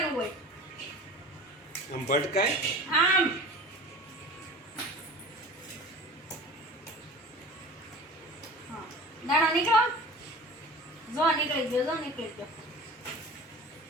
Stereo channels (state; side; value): normal; both; correlation 0.38